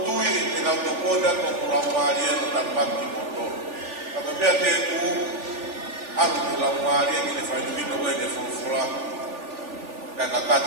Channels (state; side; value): late; left; 3.4 ms